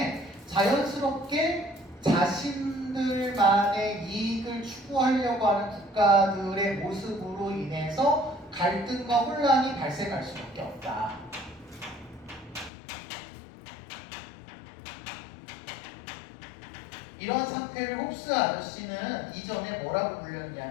자연스럽게 자신들만의 이익을 추구하려고 하는 국가들의 모습으로 인해서 갈등과 혼란이 발생할 수밖에 없다. 이런 상태를 홉스 아저씨는 이전에 뭐라고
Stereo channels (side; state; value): right; drops out; at 12.7 s